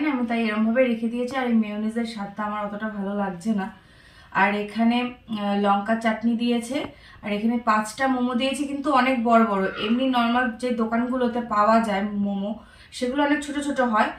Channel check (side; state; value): both; identical; correlation 1.00